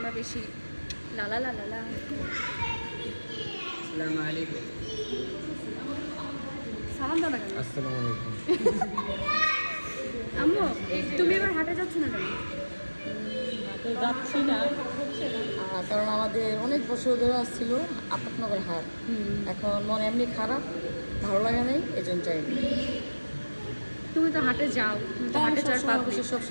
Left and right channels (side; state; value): both; inverted; correlation -1.00